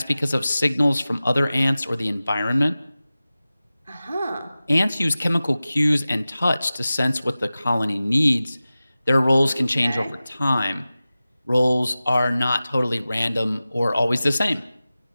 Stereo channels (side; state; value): both; inverted; correlation -0.96